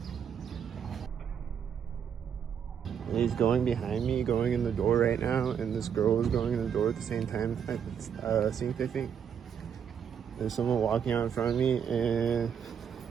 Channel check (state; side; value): quieter; left; 7.9 dB